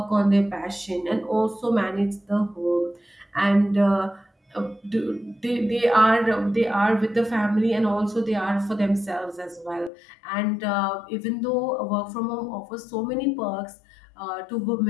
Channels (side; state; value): right; drops out; at 9.9 s